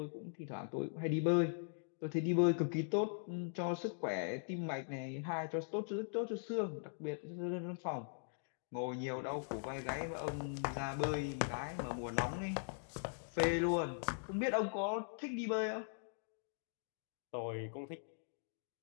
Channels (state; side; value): silent; right; digital silence